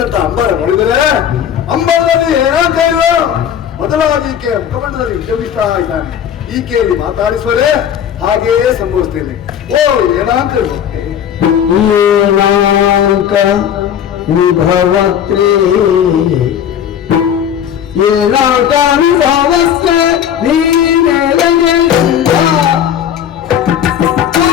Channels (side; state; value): right; quieter; 9.2 dB